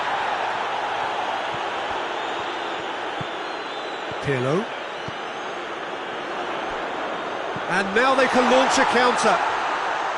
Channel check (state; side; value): identical; both; correlation 1.00